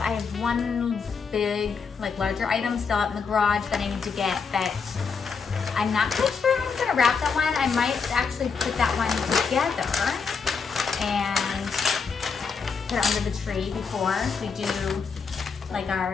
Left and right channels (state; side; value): quieter; right; 5.5 dB